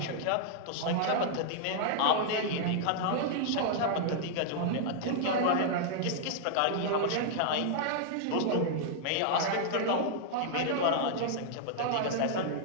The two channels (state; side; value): different; both; correlation -0.01